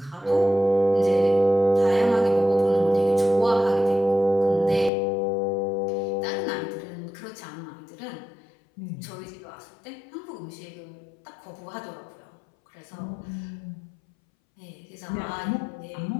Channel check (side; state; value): right; drops out; at 4.9 s